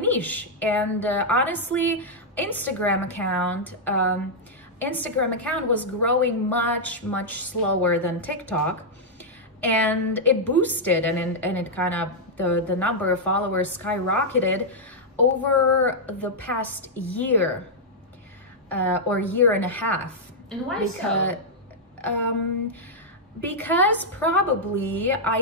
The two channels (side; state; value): both; normal; correlation -0.05